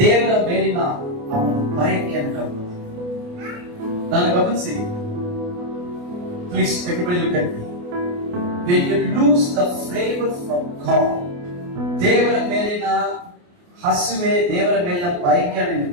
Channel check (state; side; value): late; left; 28 ms